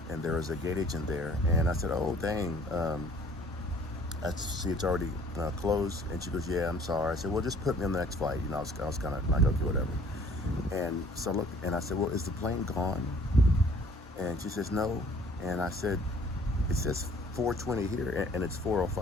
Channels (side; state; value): both; normal; correlation 0.55